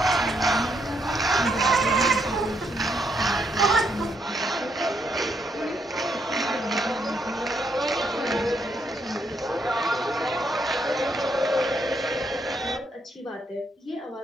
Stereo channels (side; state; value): both; normal; correlation 0.76